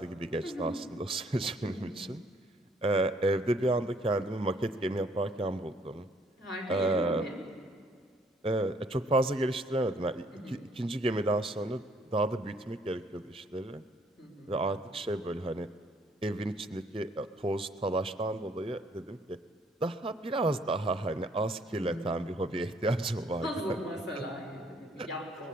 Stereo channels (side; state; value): both; normal; correlation 0.64